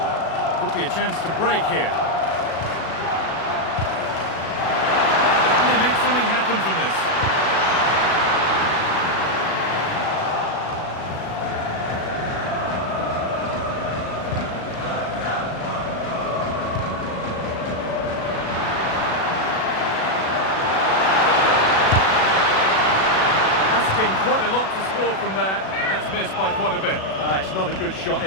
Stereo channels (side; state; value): right; late; 37 ms